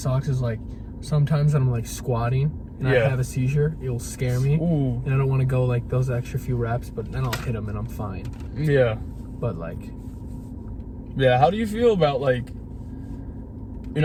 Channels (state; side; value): identical; both; correlation 1.00